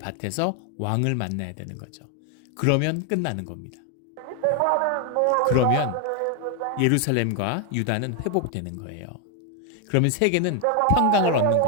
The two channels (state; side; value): different; both; correlation 0.01